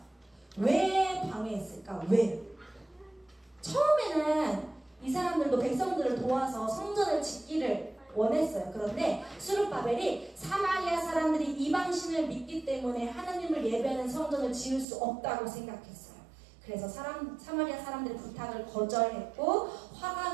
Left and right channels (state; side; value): drops out; left; at 14.9 s